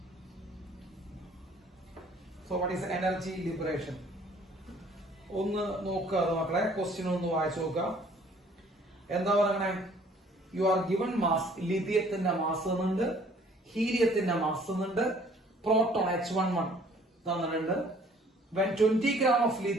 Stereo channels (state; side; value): normal; both; correlation 0.57